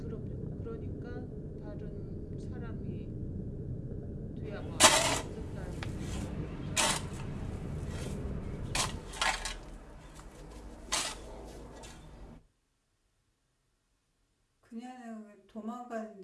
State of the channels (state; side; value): identical; both; correlation 1.00